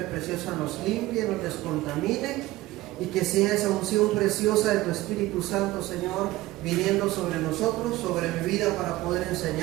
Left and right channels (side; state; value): left; quieter; 17.7 dB